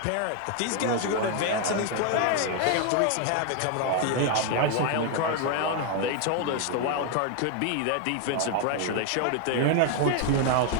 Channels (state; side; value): different; both; correlation 0.00